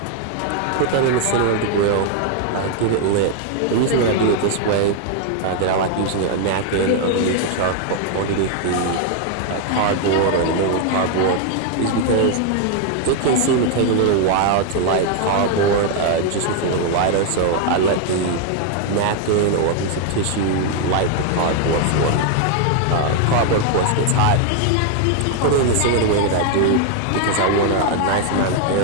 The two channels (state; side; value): different; both; correlation 0.00